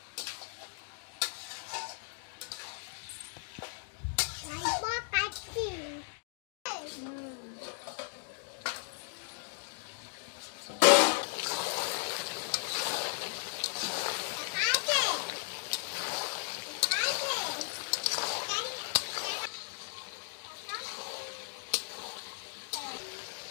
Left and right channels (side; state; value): right; silent; digital silence